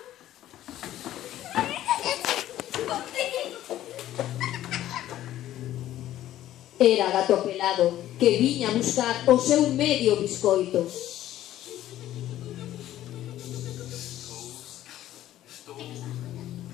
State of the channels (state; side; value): quieter; right; 13.3 dB